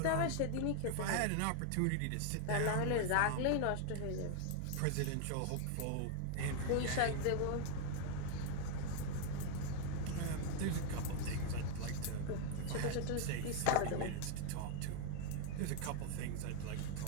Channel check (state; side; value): different; both; correlation 0.00